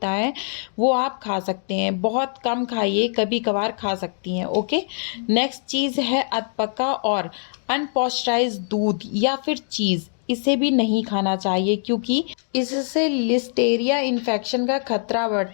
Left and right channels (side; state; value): right; silent; digital silence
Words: है वो आप खा सकते हैं। बहुत कम खाइए, कभी कभार खा सकती हैं। ओके। नेक्स्ट चीज़ है अधपका और अनपॉस्चराइज्ड दूध या फिर चीज़, इसे भी नहीं खाना चाहिए क्योंकि इससे लिस्टेरिया इन्फेक्शन का खतरा